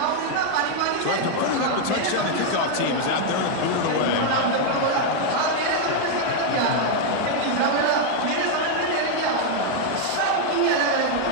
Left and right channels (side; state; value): both; different; correlation 0.00